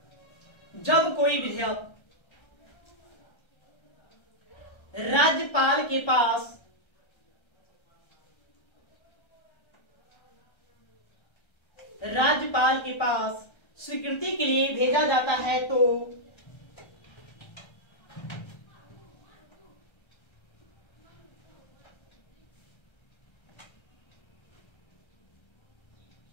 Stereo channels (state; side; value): late; right; 1.3 ms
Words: राज्यपाल के पास स्वीकृति के लिए भेजा जाता है तो